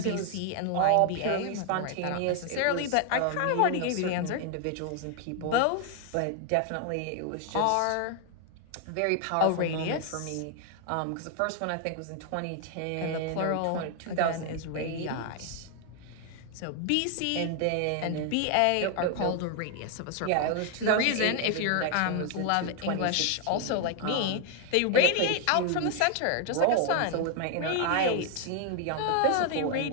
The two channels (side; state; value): both; different; correlation 0.01